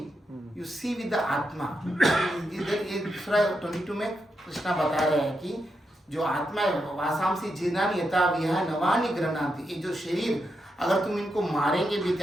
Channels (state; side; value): normal; both; correlation 0.84